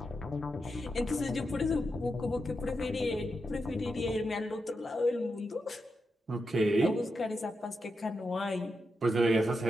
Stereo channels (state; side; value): normal; both; correlation 0.86